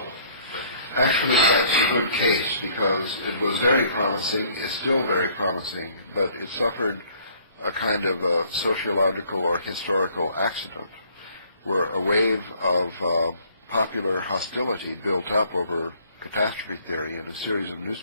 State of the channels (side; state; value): both; inverted; correlation -0.59